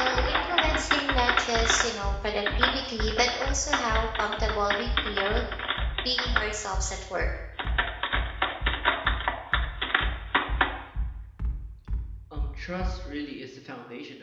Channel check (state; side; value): identical; both; correlation 1.00